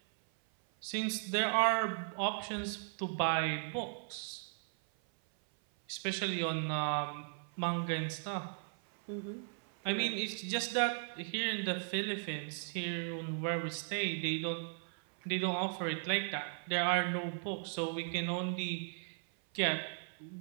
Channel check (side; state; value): left; silent; 53 dB below the other